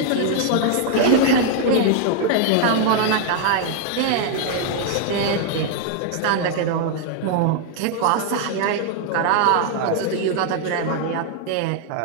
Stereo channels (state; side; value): different; both; correlation 0.00